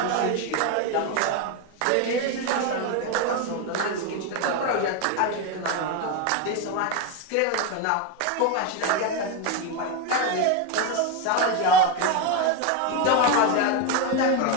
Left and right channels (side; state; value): both; different; correlation 0.03